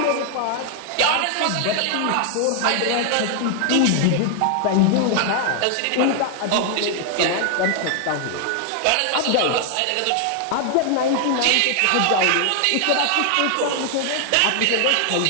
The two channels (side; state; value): both; different; correlation 0.00